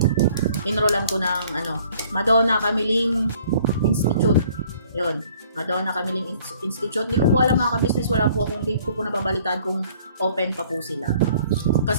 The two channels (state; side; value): inverted; both; correlation -0.57